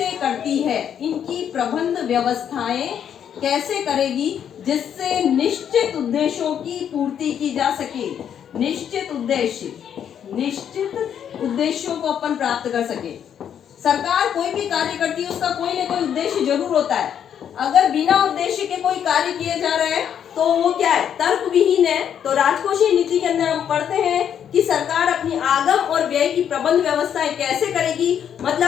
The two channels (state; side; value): quieter; right; 8.9 dB